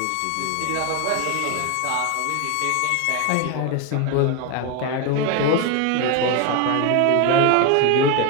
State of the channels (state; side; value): different; both; correlation 0.02